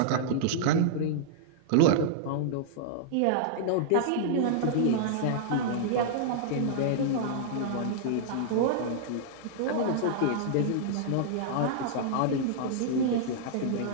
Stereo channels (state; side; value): different; both; correlation -0.02